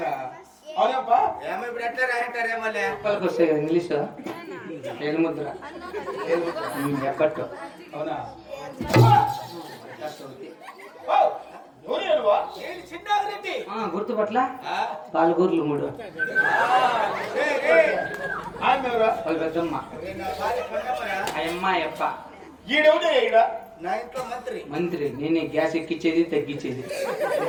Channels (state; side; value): identical; both; correlation 1.00